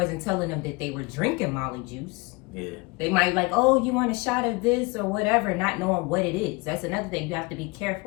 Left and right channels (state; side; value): quieter; right; 26.3 dB